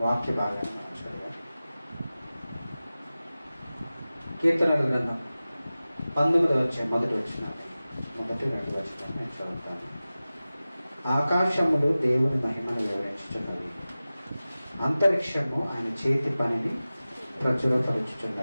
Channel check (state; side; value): inverted; both; correlation -0.96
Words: వాక్య భాగాన్ని మనం చదివాం. కీర్తనల గ్రంథం 19వ అధ్యాయం మొదటి రెండు వచనం నేను చదువుతాను. ఆకాశములు దేవుని మహిమను వివరించుచున్నవి, అంతరిక్షము ఆయన చేతి పనిని